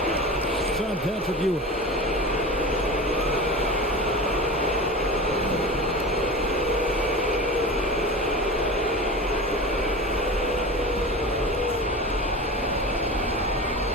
It's on Patrick Ewing.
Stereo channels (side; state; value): both; normal; correlation 0.30